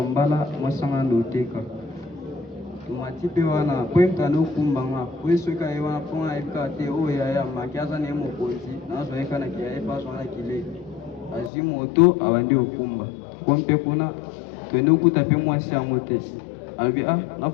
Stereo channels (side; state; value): right; drops out; at 11.5 s